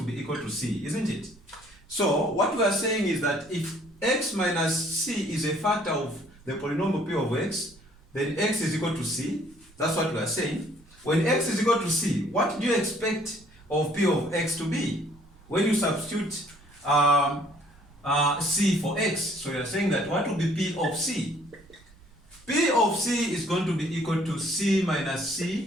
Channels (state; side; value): noise; right; rumble, 26 dB below the sound